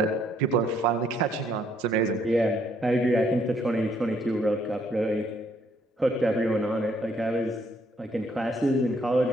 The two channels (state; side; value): normal; both; correlation 0.68